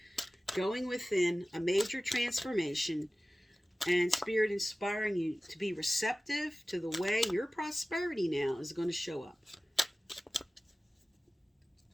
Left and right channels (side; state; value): both; normal; correlation 0.96